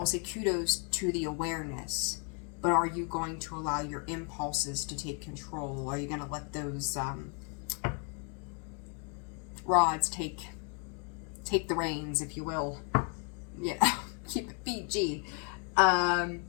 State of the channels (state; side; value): quieter; right; 39.0 dB